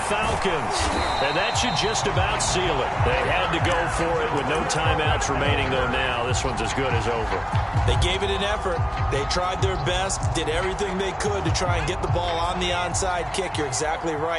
Falcons. And that should just about seal it. They had to go for it with no timeouts remaining, though now this one's as good as over. They gave it an effort. They tried their best, did everything they could to try and get the ball on the onside kick. You're exactly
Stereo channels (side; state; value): both; identical; correlation 1.00